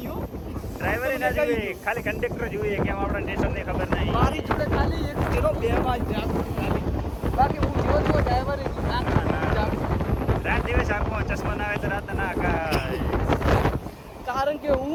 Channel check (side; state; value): both; identical; correlation 1.00